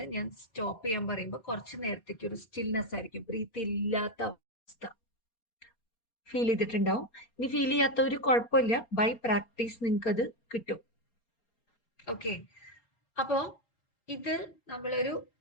ഞാൻ സ്റ്റോപ്പ് ചെയ്യാൻ പറയുമ്പോൾ കുറച്ച് നേരത്തേക്ക് ഒരു സ്റ്റിൽനെസ് ആയിരിക്കും, ബ്രീത്ത് ഇല്ലാത്ത അവസ്ഥ ഫീൽ ചെയ്തിട്ടുണ്ടാവും. ഇനി ഫീൽ ചെയ്യാത്ത ഒരു കുഴപ്പമില്ല, ബൈ പ്രാക്ടീസ് നിങ്ങൾക്ക് അത് കിട്ടും. ഓക്കെ, അപ്പൊ ഇത് നമ്മളൊരു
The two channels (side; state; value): right; late; 4.3 ms